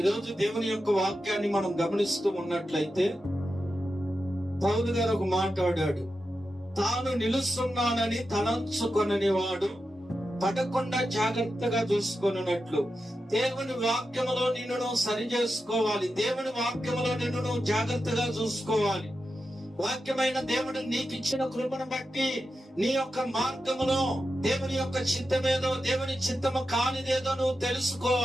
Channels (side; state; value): both; normal; correlation 0.90